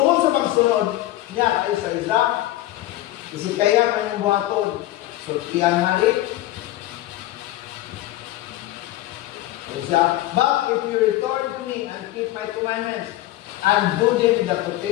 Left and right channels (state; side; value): quieter; right; 15.7 dB